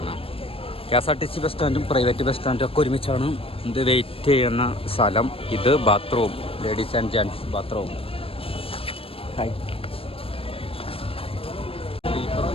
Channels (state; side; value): late; right; 0.27 ms